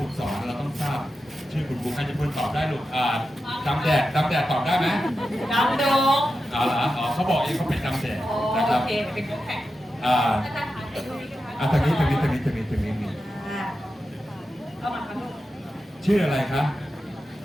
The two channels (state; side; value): normal; both; correlation 0.90